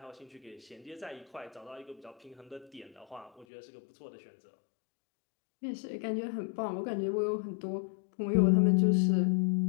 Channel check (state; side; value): drops out; right; at 3.5 s